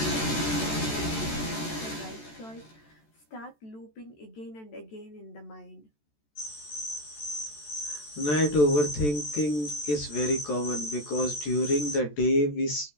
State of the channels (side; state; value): right; late; 14 ms